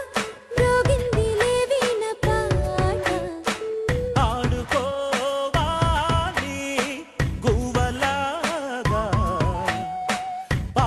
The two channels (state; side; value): identical; both; correlation 1.00